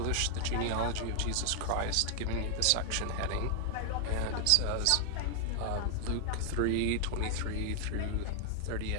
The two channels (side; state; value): both; different; correlation 0.00